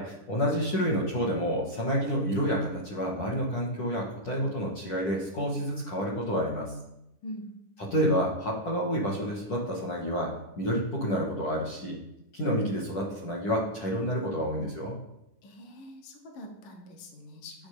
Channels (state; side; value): late; right; 10 ms